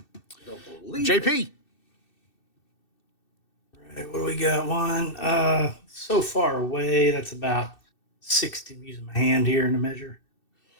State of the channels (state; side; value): late; right; 2.6 ms